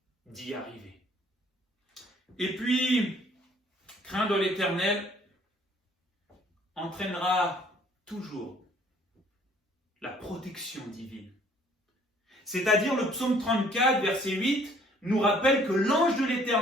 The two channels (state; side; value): normal; both; correlation 0.59